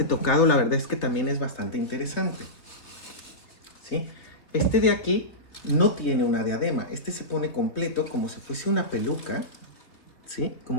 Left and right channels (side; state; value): right; late; 3.3 ms